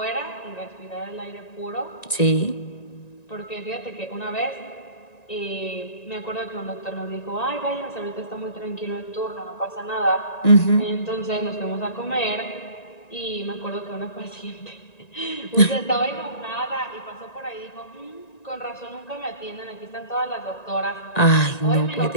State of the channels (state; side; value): late; right; 1.9 ms